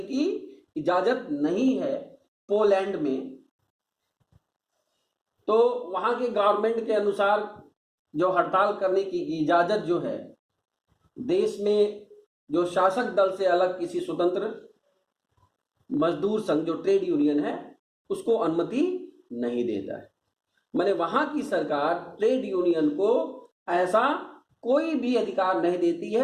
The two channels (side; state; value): both; identical; correlation 1.00